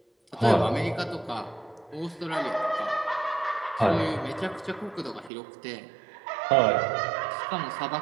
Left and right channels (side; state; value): left; drops out; at 5.3 s